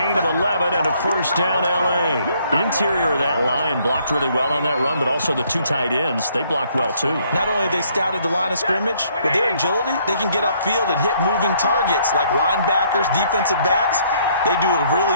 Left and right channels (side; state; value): both; inverted; correlation -0.66